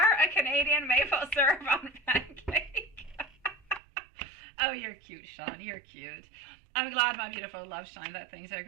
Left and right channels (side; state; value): left; drops out; at 3.8 s